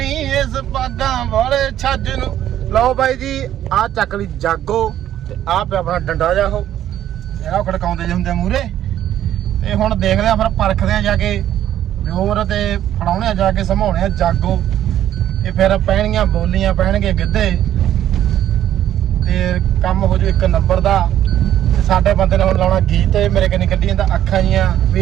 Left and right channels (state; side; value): quieter; left; 11.6 dB